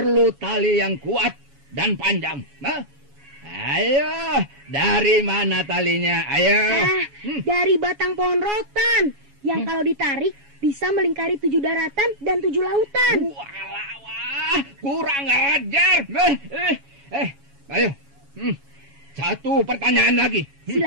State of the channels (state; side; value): late; left; 7.2 ms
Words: tali yang kuat dan panjang. Ayo, dari mana talinya? Ayo. Dari batang pohon rotan yang kalau ditarik bisa melingkari 7 daratan dan 7 lautan. Wah, kurang ajar. Ayo. Satu pertanyaan lagi.